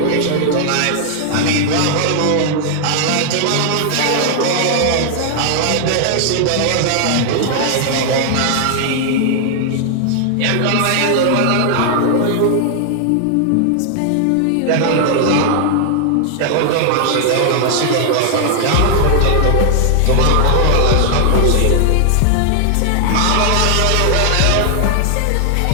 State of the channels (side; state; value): both; different; correlation 0.00